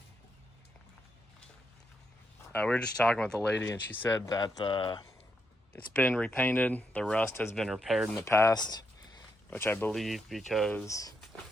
We were just talking with the lady, and she said that it's been repainted. The rust has been repaired in the past, which I believe because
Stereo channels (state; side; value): normal; both; correlation 0.80